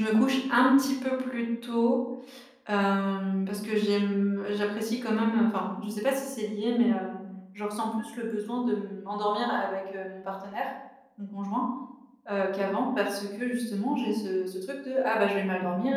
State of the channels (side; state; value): both; identical; correlation 1.00